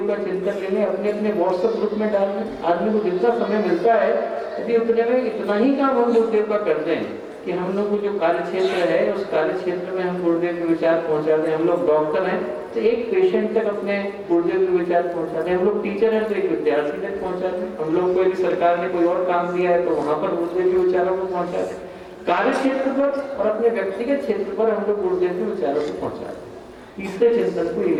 का चिंतन ले लें, अपने अपने व्हाट्सएप ग्रुप में डाल दें, आदमी को जितना समय मिलता है यदि उतने में इतना ही काम हम गुरुदेव का करते हैं कि हम लोग को जो कार्य क्षेत्र है, उस कार्य क्षेत्र में हम गुरुदेव के विचार पहुंचाते हैं। हम लोग डॉक्टर हैं तो एक पेशेंट तक अपने गुरुदेव के विचार पहुंचाते हैं, हम लोग टीचर हैं तो एक विद्यार्थी तक पहुंचाते हैं, हम लोग को यदि सरकार ने कोई और काम दिया है तो वहां पर गुरुदेव के विचारों को पहुंचाते हैं। कार्य क्षेत्र पर और अपने व्यक्तिगत क्षेत्र पर हम लोग गुरुदेव के विचारों को पहुंचाते हैं। तीसरे चिंतन को ये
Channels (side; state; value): both; identical; correlation 1.00